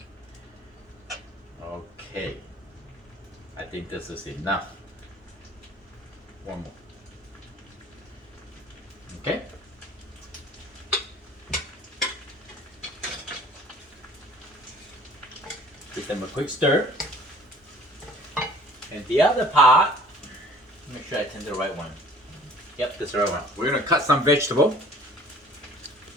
Okay, I think this is enough. One more. Okay. Give them a quick stir. And the other part, make sure I turn the right one. Yep, that's the right one. We're gonna cut some vegetable.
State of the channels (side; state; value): both; normal; correlation 0.51